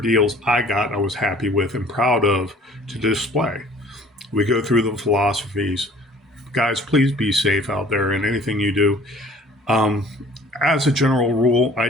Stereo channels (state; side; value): normal; both; correlation 0.52